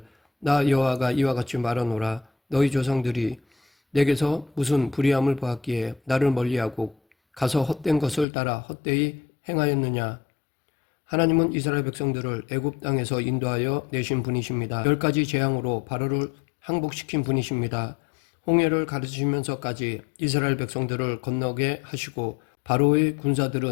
나 여호와가 이와 같이 말하노라 너희 조상들이 내게서 무슨 불의함을 보았기에 나를 멀리하고 가서 헛된 것을 따라 헛되이 행하였느냐. 하나님은 이스라엘 백성들을 애굽 땅에서 인도하여 내신 분이십니다. 10가지 재앙으로 바로를 항복시킨 분이십니다. 홍해를 가르치면서까지 이스라엘 백성들을 건너게 하시고 바로의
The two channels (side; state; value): right; drops out; at 8.2 s